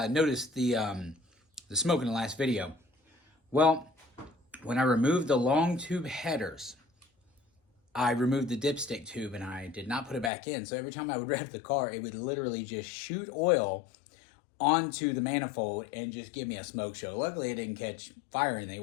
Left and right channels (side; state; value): right; drops out; at 10.3 s